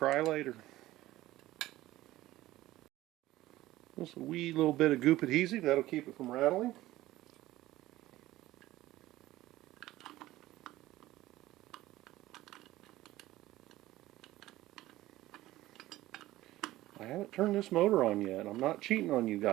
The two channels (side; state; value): left; quieter; 16.2 dB